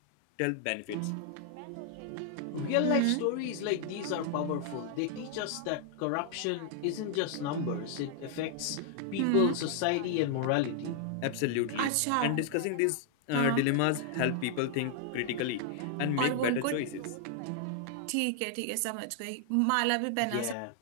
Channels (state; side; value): different; both; correlation 0.00